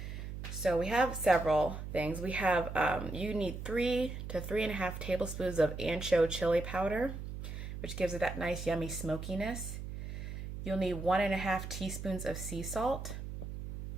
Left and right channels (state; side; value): noise; right; hum, 7 dB below the sound